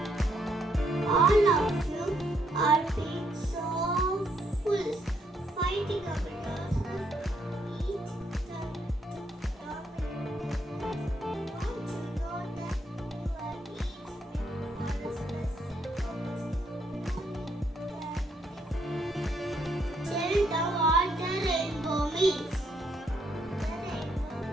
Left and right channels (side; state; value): both; normal; correlation 0.73